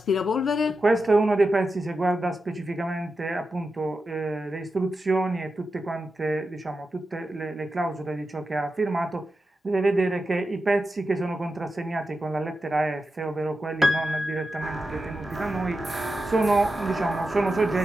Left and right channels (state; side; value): normal; both; correlation 0.90